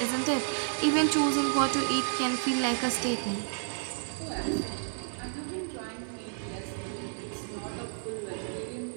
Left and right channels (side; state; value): left; silent; digital silence